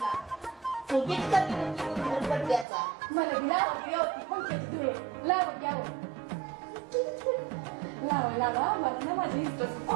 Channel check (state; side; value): drops out; left; at 2.7 s